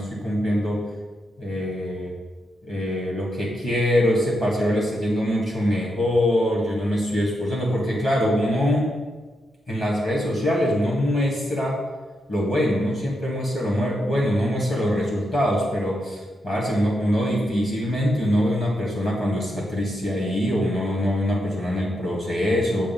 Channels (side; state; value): both; normal; correlation 0.83